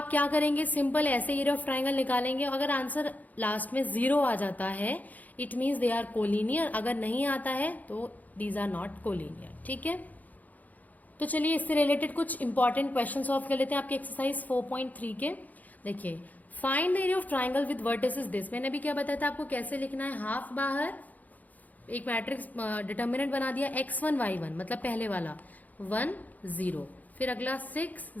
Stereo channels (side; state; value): right; late; 0.079 ms